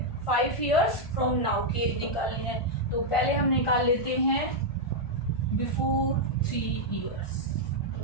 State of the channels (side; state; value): right; late; 1.5 ms